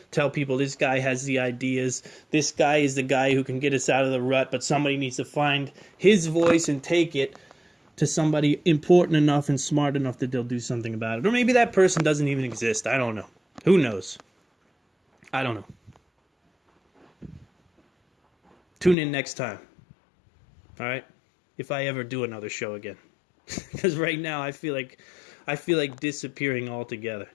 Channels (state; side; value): drops out; right; at 18.9 s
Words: Tell people this guy has the ideas. This guy is the guy who can get us out of the rut, but somebody needs to find his voice and take it to somebody important enough and smart enough that they'll do something about it. Or maybe that person doesn't even exist. I don't know. Who knows? I don't know. Tune in next time. All right? If I ever do another show again. Because right now I feel like disappearing altogether.